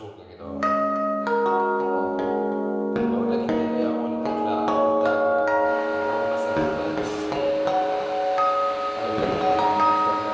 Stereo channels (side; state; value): both; identical; correlation 1.00